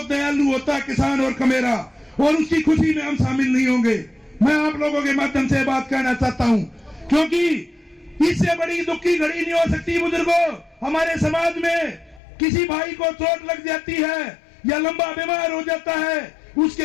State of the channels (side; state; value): right; drops out; at 12.2 s